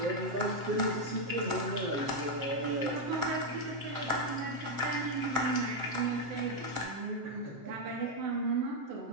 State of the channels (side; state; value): left; late; 7.6 ms